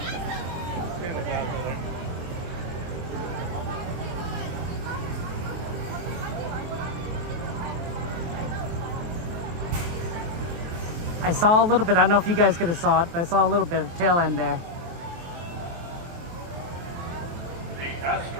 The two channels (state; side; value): late; left; 23 ms